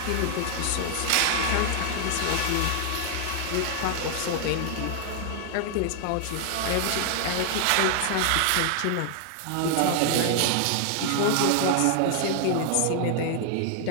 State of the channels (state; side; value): different; both; correlation 0.00